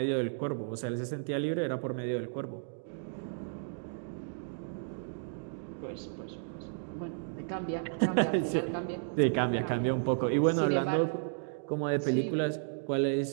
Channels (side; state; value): left; silent; digital silence